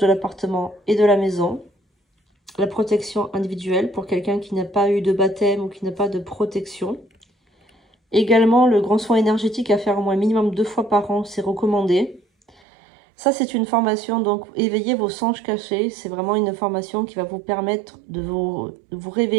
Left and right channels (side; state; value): left; drops out; at 12.6 s